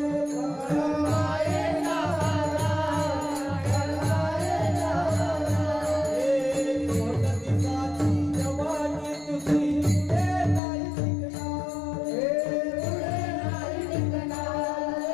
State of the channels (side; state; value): right; drops out; at 10.6 s